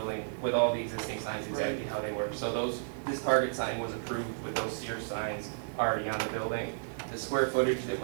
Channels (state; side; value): silent; left; digital silence